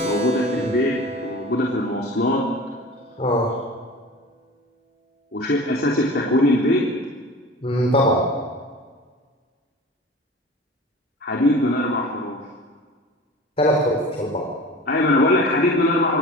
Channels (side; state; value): both; normal; correlation 0.38